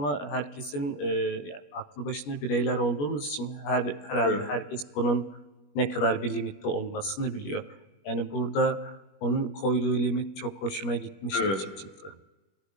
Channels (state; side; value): late; right; 21 ms